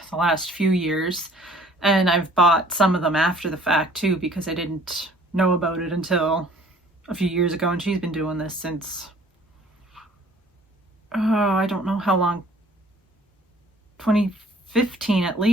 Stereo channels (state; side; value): normal; both; correlation 0.54